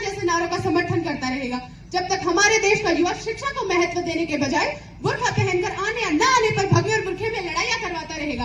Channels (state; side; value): identical; both; correlation 1.00